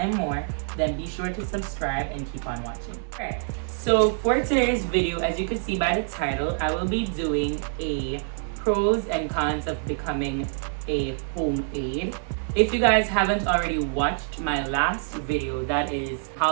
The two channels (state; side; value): silent; left; 57 dB below the other